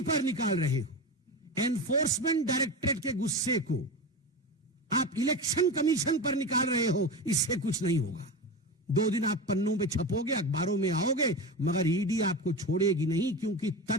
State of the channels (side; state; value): both; normal; correlation 0.23